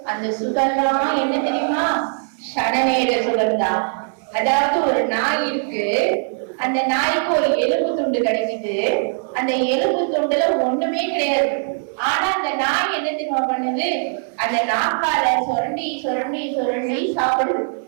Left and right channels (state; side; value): silent; left; 63 dB below the other